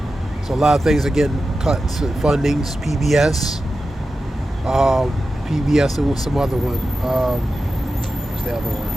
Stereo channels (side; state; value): both; normal; correlation 0.92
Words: So a lot of things are getting cut. Fundings, PBS, and with some other one. What's the other one?